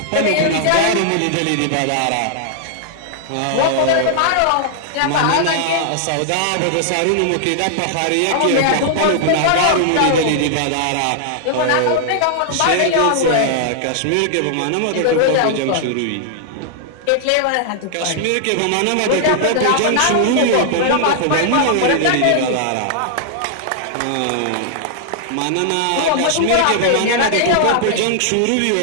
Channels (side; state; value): both; different; correlation -0.01